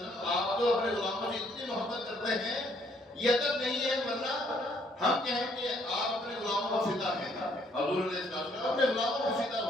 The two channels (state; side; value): normal; both; correlation 0.67